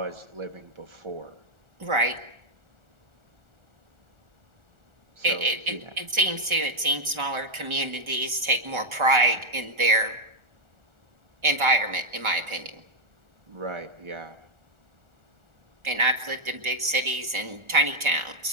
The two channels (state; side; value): late; left; 1.4 ms